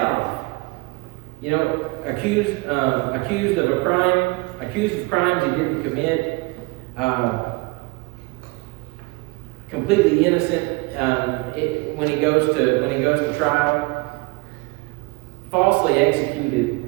off. Accused of a crime, accused of crimes he didn't commit, completely innocent when he goes to trial, falsely executed,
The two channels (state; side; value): quieter; left; 25.7 dB